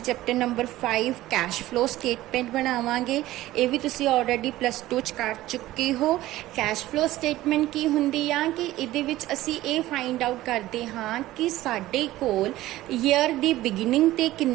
chapter number 5 cash flow statement ਬਣਾਵਾਂਗੇ। ਇਹ ਵੀ ਤੁਸੀਂ ਆਲਰੇਡੀ ਪਲੱਸ 2 ਚ ਕਰ ਚੁੱਕੇ ਹੋ। ਕੈਸ਼ ਫਲੋ ਸਟੇਟਮੈਂਟ ਕੀ ਹੁੰਦੀ ਆ ਕਿ ਇਹਦੇ ਵਿੱਚ ਅਸੀਂ ਇਹ ਫਾਈਂਡ ਆਊਟ ਕਰਦੇ ਹਾਂ ਕਿ ਸਾਡੇ ਕੋਲ ਈਅਰ ਦੀ ਬਿਗਿਨਿੰਗ ਤੇ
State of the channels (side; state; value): left; quieter; 16.0 dB